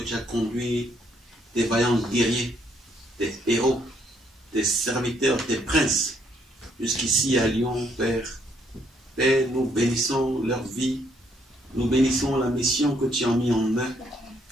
as conduit tes vaillants guerriers, tes héros, tes serviteurs, tes princes, jusqu'ici à Lyon, Père. Père, nous bénissons leur vie, nous bénissons la mission que tu as mis en eux,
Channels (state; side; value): normal; both; correlation 0.70